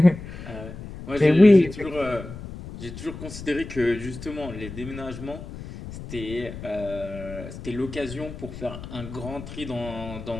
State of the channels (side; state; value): left; noise; rumble, 12 dB below the sound